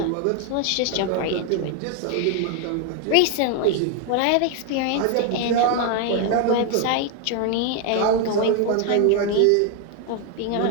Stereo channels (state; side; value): different; both; correlation 0.01